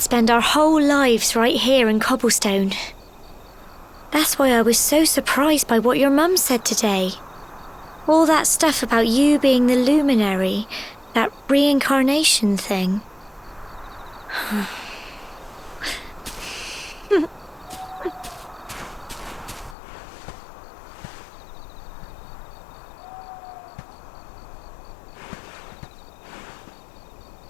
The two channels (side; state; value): right; drops out; at 19.8 s